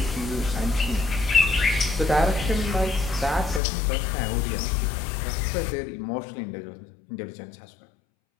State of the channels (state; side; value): drops out; right; at 3.6 s